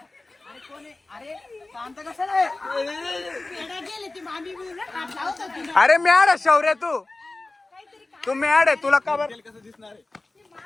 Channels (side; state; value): right; quieter; 3.1 dB